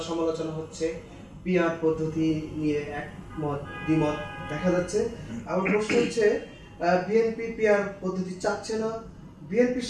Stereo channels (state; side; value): identical; both; correlation 1.00